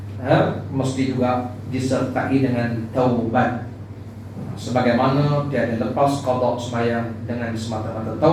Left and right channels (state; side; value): identical; both; correlation 1.00